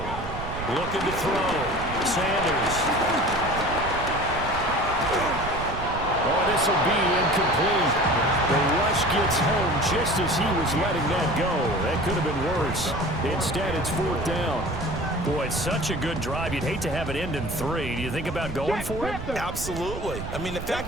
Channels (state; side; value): noise; right; rumble, 8 dB below the sound